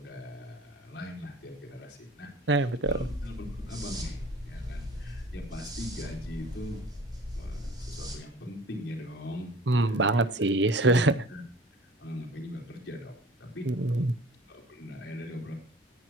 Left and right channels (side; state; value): both; normal; correlation 0.46